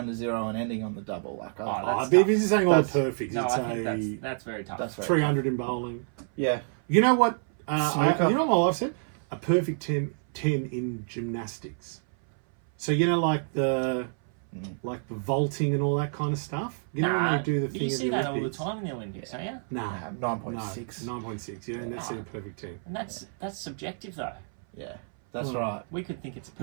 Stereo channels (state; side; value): silent; left; 58 dB below the other